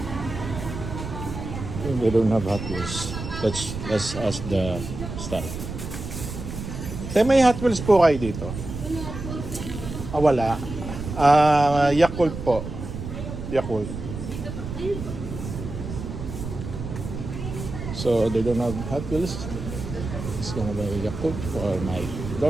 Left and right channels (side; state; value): right; noise; rumble, 8 dB below the sound